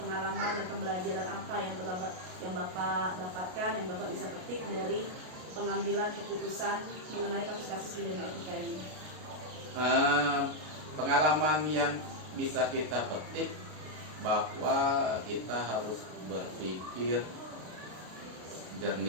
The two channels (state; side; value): late; left; 33 ms